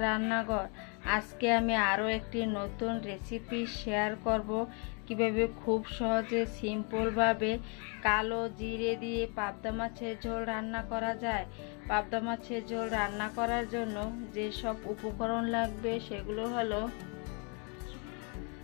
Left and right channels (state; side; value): quieter; right; 35.9 dB